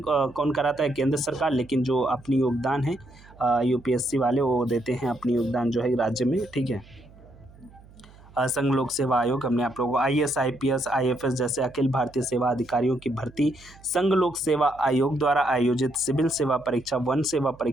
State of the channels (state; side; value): noise; right; hum, 23 dB below the sound